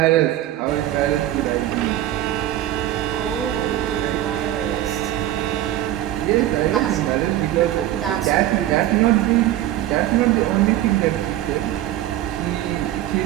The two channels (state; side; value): quieter; left; 13.6 dB